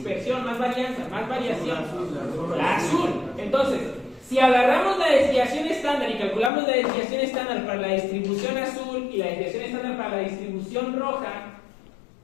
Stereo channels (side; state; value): right; drops out; at 6.5 s